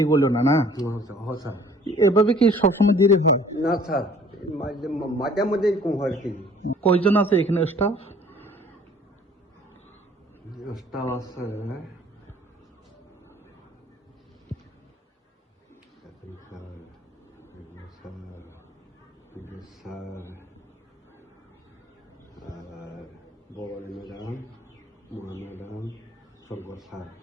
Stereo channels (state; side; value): normal; both; correlation 0.54